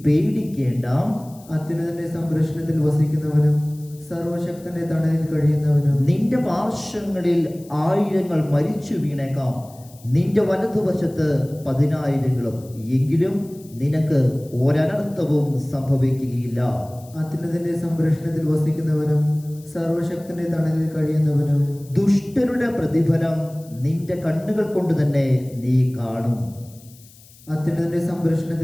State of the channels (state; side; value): noise; left; hiss, 24 dB below the sound